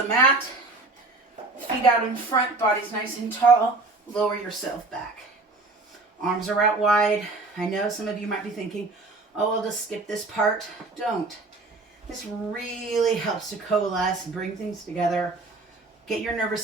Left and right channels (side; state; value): left; quieter; 3.4 dB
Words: the mat. Feet out in front, body's nice and tall. Lower yourself back. Arms are out wide. I know some of you might be thinking, oh, I'll just skip this part. Don't. This really helps to coalesce and bring things together. Get your nervous